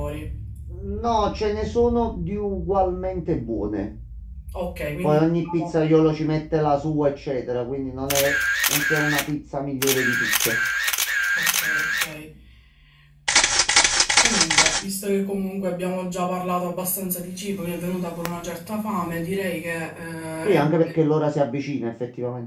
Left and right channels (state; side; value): identical; both; correlation 1.00